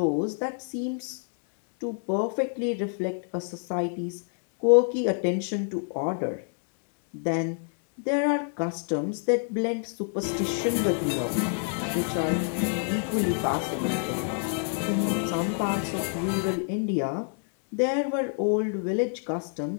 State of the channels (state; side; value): silent; right; 59 dB below the other